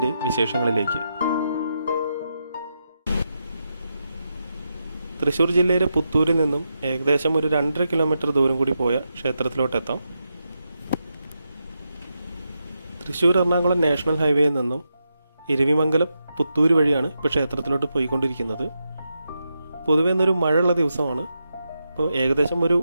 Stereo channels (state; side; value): inverted; both; correlation -0.86